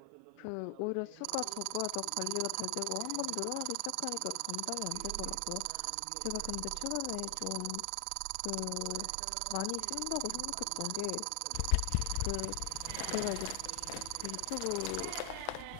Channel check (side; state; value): both; different; correlation 0.00